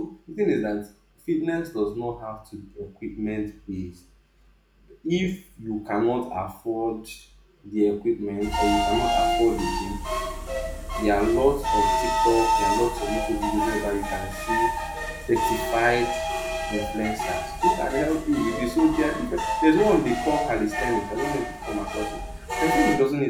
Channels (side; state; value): both; identical; correlation 1.00